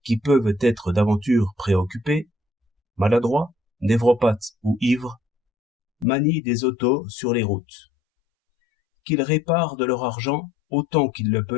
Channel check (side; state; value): right; drops out; at 6.1 s